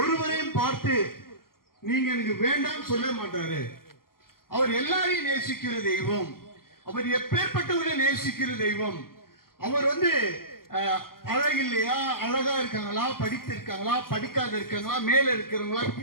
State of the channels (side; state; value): right; late; 0.92 ms